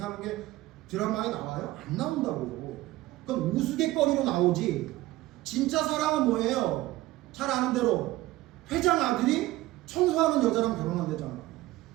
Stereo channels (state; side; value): quieter; left; 17.4 dB